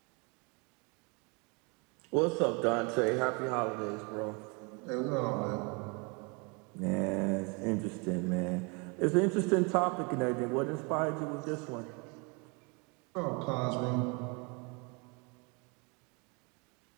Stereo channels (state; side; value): quieter; left; 31.3 dB